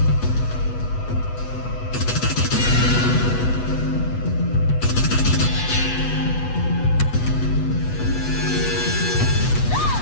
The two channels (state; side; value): late; right; 8.2 ms